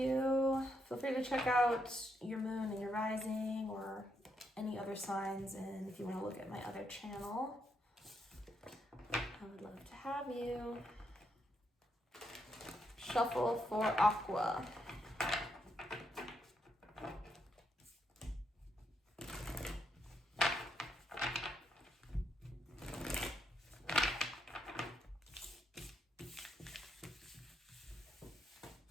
Feel free to check out your moon and your rising or any other signs. And if you want to look at my other channel, I would love to have you. Shuffle for Aqua.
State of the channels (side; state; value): both; normal; correlation 0.78